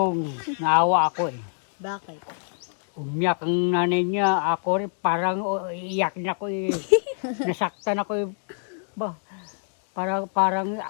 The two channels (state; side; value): silent; right; digital silence